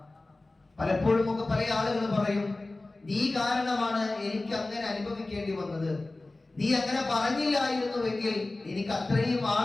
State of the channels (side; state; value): right; quieter; 3.0 dB